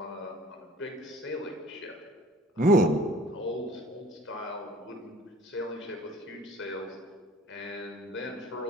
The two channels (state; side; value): normal; both; correlation 0.50